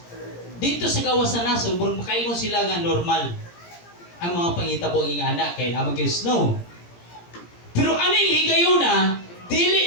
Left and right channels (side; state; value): right; late; 17 ms